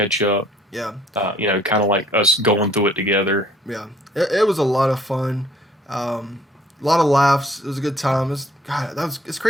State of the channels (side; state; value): both; normal; correlation 0.59